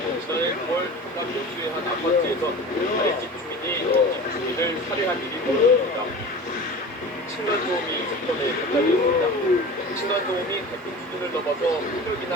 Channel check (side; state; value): both; normal; correlation 0.35